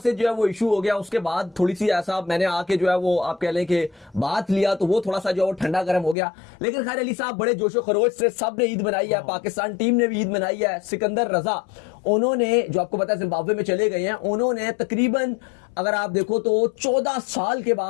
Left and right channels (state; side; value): drops out; right; at 6.2 s